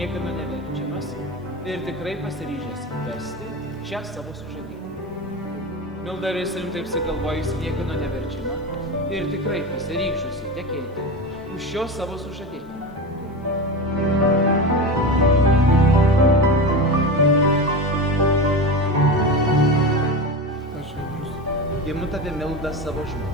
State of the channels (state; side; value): normal; both; correlation 0.24